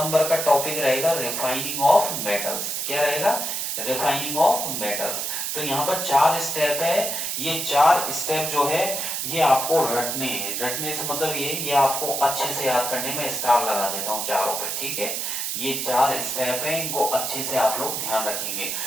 का टॉपिक रहेगा रिफाइनिंग ऑफ मेटल्स। क्या रहेगा, रिफाइनिंग ऑफ मेटल्स। तो यहाँ पर 4 स्टेप है, ये 4 स्टेप जो है ये आपको रटने हैं, रटने से मतलब ये आपको अच्छे से याद करने में स्टार लगा देता हूँ चारों पे। ठीक है, ये 4 स्टेप है, इनको अच्छे से आप लोग ध्यान रखेंगे।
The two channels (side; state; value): right; noise; hiss, 2 dB below the sound